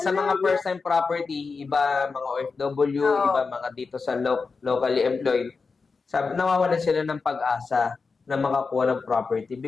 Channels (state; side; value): quieter; right; 4.6 dB